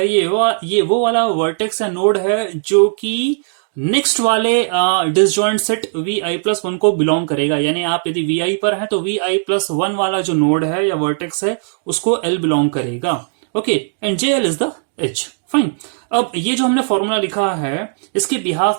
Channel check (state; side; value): silent; left; digital silence